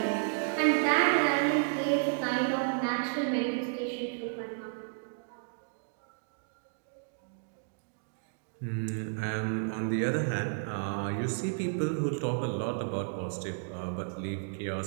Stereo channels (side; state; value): left; silent; digital silence